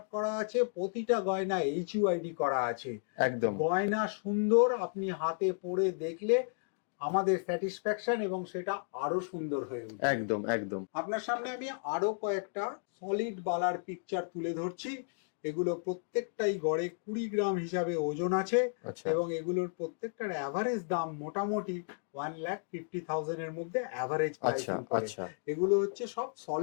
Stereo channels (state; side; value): silent; right; digital silence